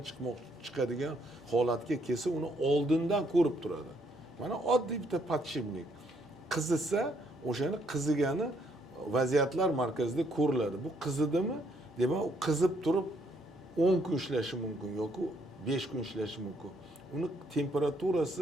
chiqadigan holatga kelsa, uni oldindan ko'rib turadi. Mana oddiy bitta podshipnik qizisa, o'shani qizigani vaziyatlar markazida ko'riladi. Bu qizidimi? Demak, u qizib turib 10 kun ishlashi mumkin yoki 5 kun ishlashi mumkin. Uni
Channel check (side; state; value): both; normal; correlation 0.70